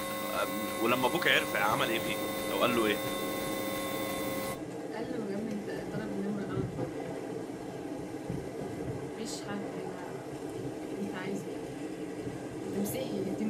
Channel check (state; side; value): identical; both; correlation 1.00